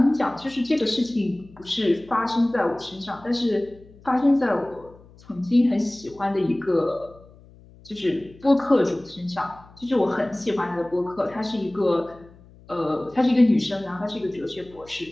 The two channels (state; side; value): noise; left; hum, 24 dB below the sound